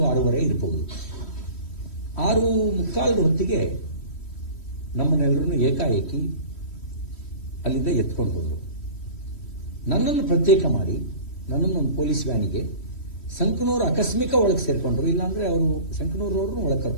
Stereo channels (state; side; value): late; right; 3.1 ms